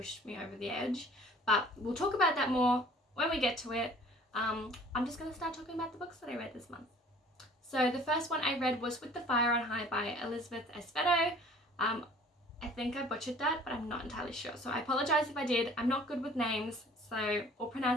me over the edge. But we'll talk about that more when we get to it. I'm just going to start talking about the books that I read this month. So the first one I read was With the Fire on High by Elizabeth Espedo. I think I butchered that, but I'm not entirely sure, so I apologize if I did. I'm not good with names or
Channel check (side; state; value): both; normal; correlation 0.50